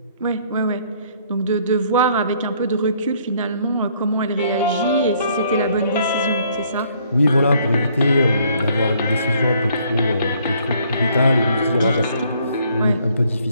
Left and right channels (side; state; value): both; inverted; correlation -0.64